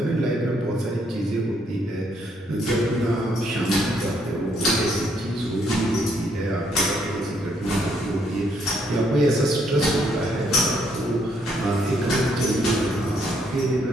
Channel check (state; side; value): normal; both; correlation 0.71